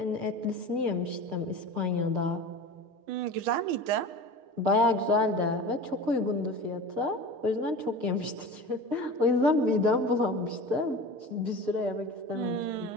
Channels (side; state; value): left; late; 6.6 ms